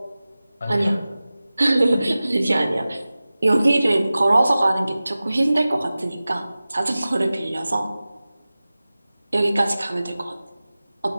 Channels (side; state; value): both; inverted; correlation -0.97